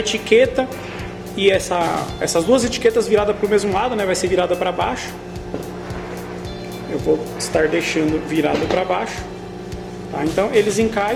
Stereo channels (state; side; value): identical; both; correlation 1.00